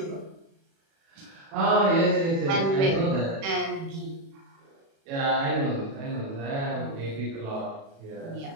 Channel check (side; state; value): left; late; 36 ms